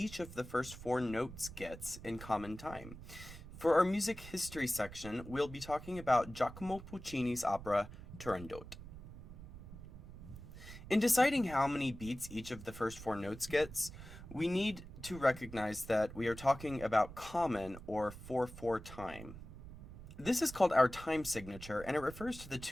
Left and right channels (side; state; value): right; noise; rumble, 14 dB below the sound